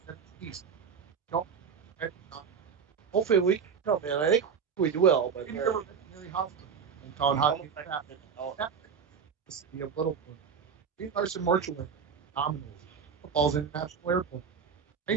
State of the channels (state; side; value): quieter; left; 6.6 dB